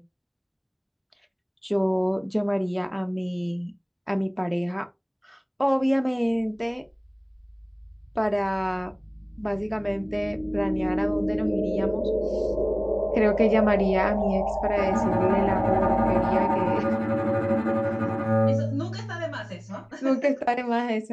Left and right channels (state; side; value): identical; both; correlation 1.00